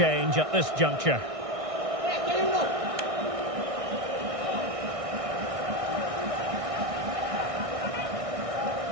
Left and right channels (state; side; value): late; left; 1.6 ms